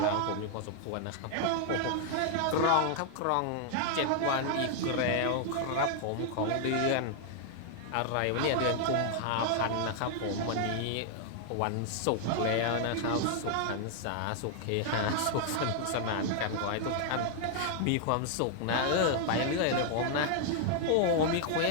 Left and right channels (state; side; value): different; both; correlation 0.00